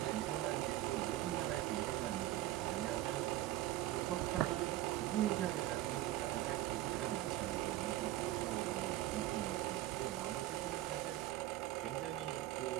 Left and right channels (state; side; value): quieter; left; 15.1 dB